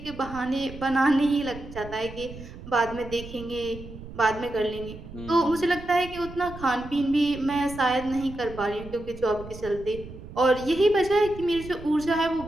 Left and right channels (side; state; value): right; noise; rumble, 14 dB below the sound